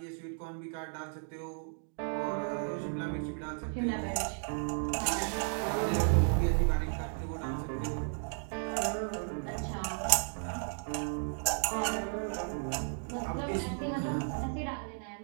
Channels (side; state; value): left; silent; 55 dB below the other